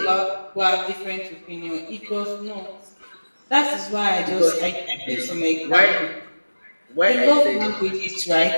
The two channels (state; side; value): inverted; both; correlation -1.00